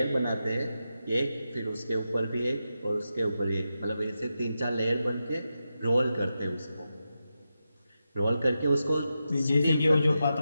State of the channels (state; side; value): inverted; both; correlation -0.89